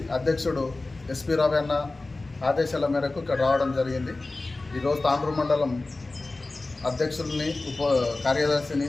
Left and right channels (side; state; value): right; quieter; 3.2 dB